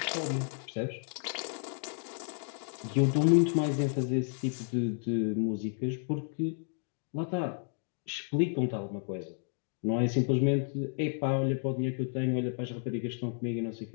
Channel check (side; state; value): right; silent; 56 dB below the other